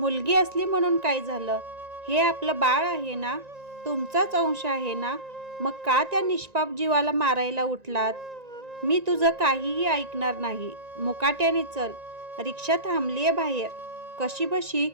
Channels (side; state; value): left; late; 1.9 ms